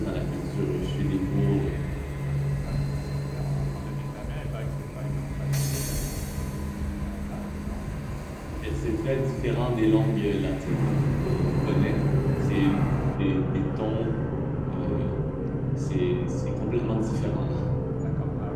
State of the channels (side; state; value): both; identical; correlation 1.00